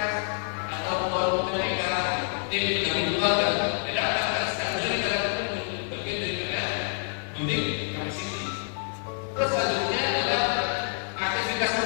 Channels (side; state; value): right; silent; 60 dB below the other